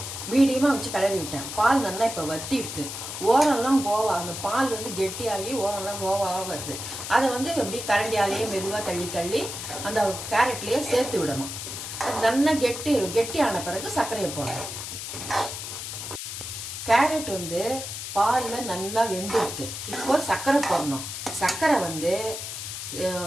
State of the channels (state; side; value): noise; left; hiss, 7 dB below the sound